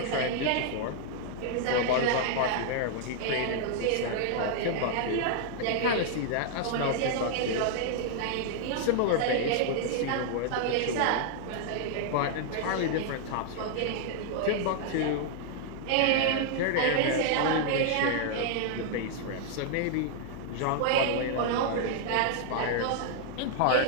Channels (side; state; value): both; different; correlation -0.01